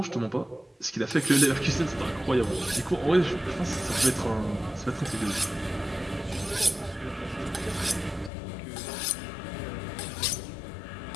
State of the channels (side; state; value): right; drops out; at 8.3 s